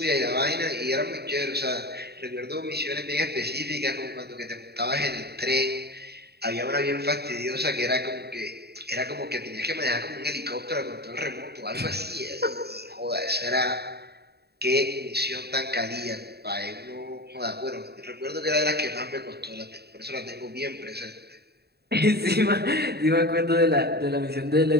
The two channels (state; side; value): late; left; 0.47 ms